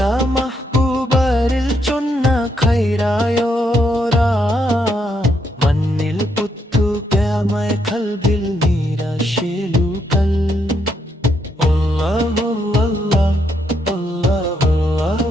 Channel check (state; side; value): normal; both; correlation 0.77